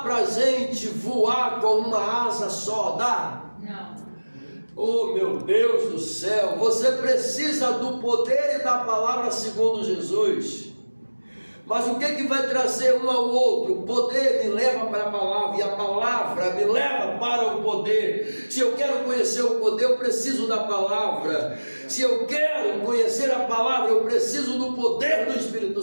para a gente voar com uma asa só, dá? Não. Oh meu Deus do céu, você precisa do poder e da palavra segundo Jesus. Mas o que vai trazer um ao outro? O poder me leva para a palavra e a palavra me leva para o poder. Se eu quero conhecer o poder, eu preciso da palavra. Se eu quero conhecer a palavra, eu preciso do poder do Espírito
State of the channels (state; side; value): inverted; both; correlation -1.00